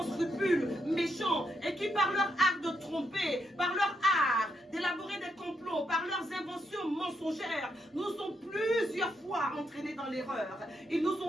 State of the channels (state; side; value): normal; both; correlation 0.80